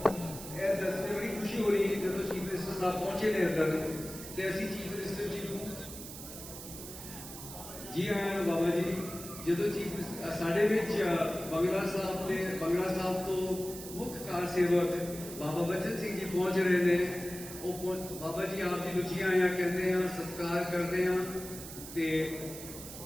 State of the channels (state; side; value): noise; right; hiss, 11 dB below the sound